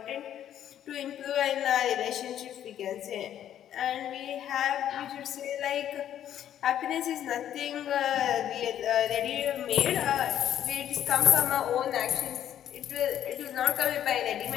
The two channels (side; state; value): right; quieter; 10.7 dB